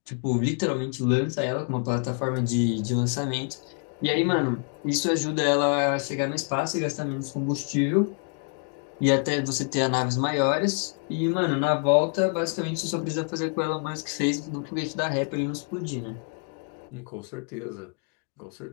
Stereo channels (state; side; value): quieter; right; 39.5 dB